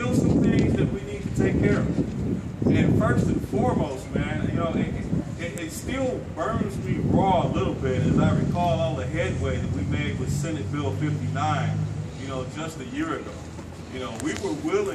some things that we need to take care of. And first and foremost, man, you know, it still burns me raw a little bit as I recall all the headway that we made with Senate Bill 59, you know, just a year ago. You know, we were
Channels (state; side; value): identical; both; correlation 1.00